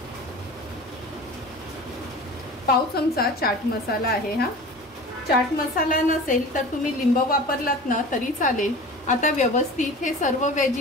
पाव चमचा चाट मसाला आहे। हा चाट मसाला नसेल तर तुम्ही लिंब वापरलात ना तरी चालेल। आता व्यवस्थित हे सर्व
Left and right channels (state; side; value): normal; both; correlation 0.37